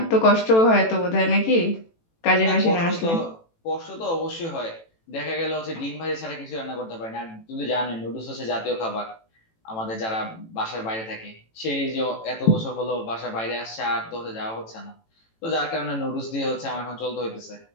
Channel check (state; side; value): late; right; 18 ms